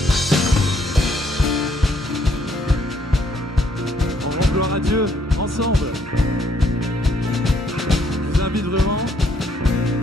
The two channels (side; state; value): both; normal; correlation 0.68